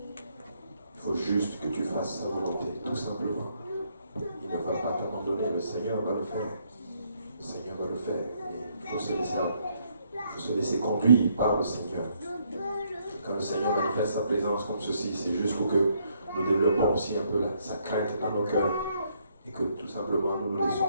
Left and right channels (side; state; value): both; inverted; correlation -0.71